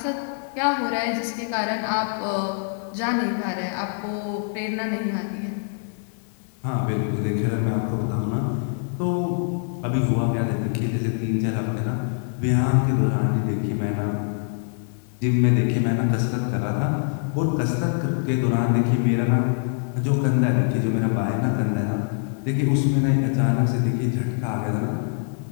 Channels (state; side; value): silent; right; 63 dB below the other